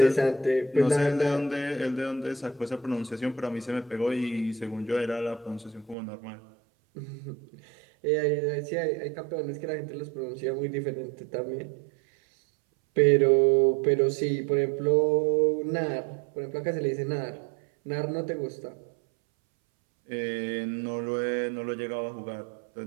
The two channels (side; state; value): left; drops out; at 6.0 s